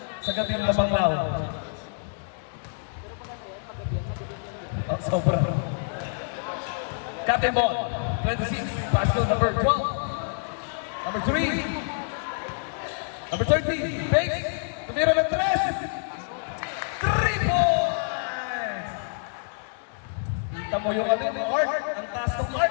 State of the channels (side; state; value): right; silent; digital silence